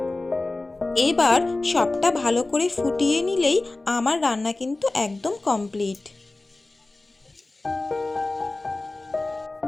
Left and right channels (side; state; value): right; quieter; 3.1 dB